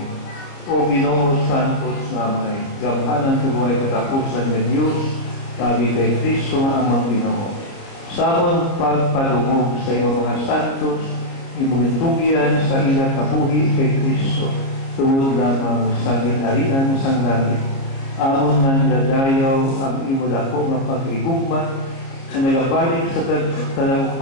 O Ginoo Santos namay, gamhanan tuway katapusan ng Diyos, tabi kay Kristo nga amang Ginoo. Samon pagpadungog sa iyong mga santos, imugintugyan sa ilang kabuhi kay Kristo, tungod lamang sa ginharian sang langit. Amon man dadayaw ang imo dako nga paghigugma, na nagabalik sa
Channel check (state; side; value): late; right; 29 ms